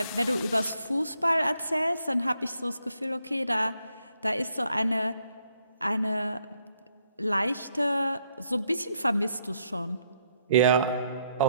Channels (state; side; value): inverted; both; correlation -0.74